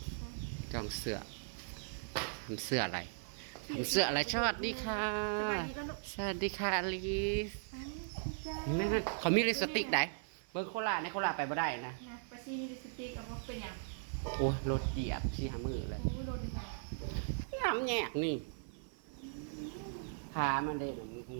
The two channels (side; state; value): left; silent; 52 dB below the other